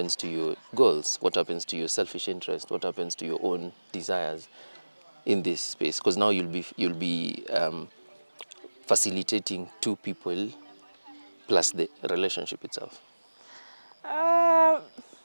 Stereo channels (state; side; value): inverted; both; correlation -1.00